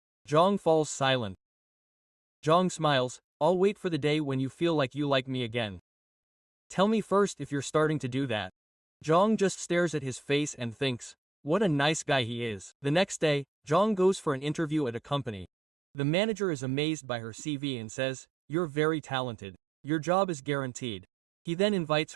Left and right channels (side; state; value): left; drops out; at 15.5 s